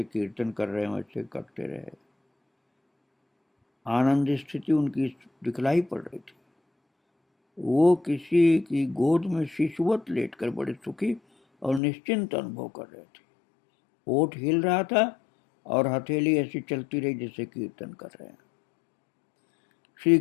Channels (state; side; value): drops out; right; at 11.8 s